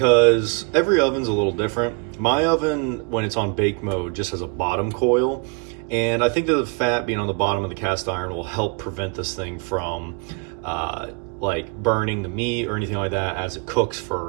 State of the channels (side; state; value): left; quieter; 34.7 dB